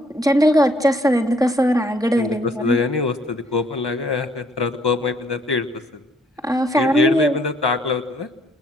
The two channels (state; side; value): normal; both; correlation 0.65